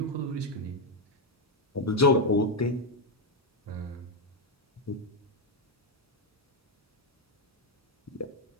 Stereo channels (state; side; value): normal; both; correlation 0.05